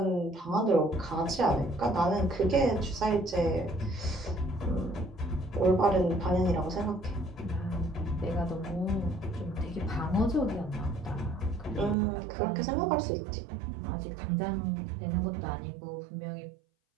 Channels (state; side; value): drops out; left; at 12.0 s